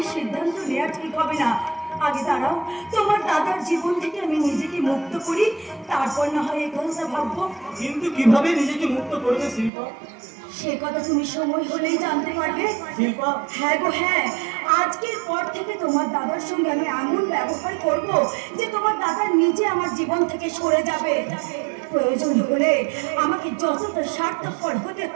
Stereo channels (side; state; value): left; drops out; at 9.7 s